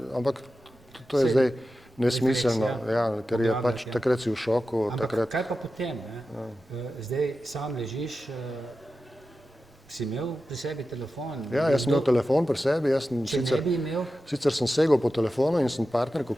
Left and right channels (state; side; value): normal; both; correlation 0.92